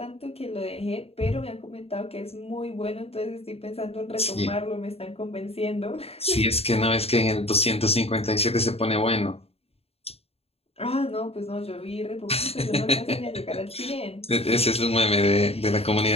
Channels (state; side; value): late; right; 0.29 ms